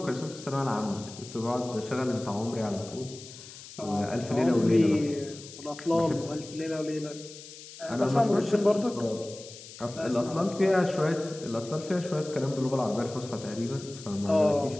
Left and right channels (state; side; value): noise; left; hiss, 16 dB below the sound